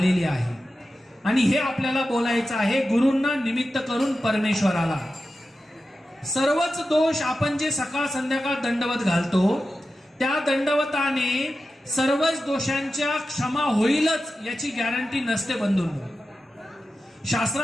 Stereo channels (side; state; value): both; normal; correlation 0.92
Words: आहे आणि हे आपल्याला बोलायचं आहे गुरूंना निमित्त करून परमेश्वराला। सर्वच दोष आपण जे सकाळ संध्याकाळ दंडवत घालतो त्या दंडवताने सर्वच दोषांच्या क्षमा होईलच याची गॅरंटी नसते बंधूंनो।